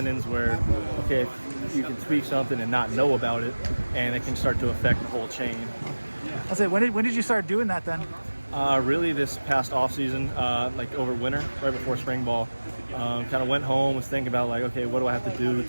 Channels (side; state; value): both; inverted; correlation -1.00